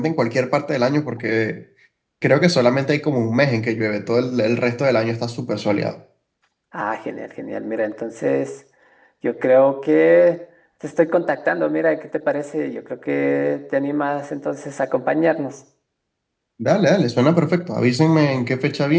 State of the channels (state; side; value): identical; both; correlation 1.00